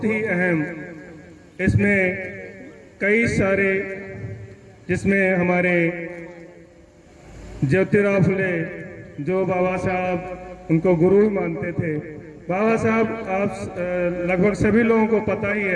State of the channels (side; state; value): both; identical; correlation 1.00